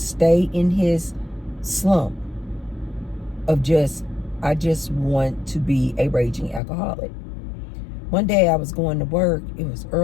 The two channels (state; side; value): drops out; right; at 6.6 s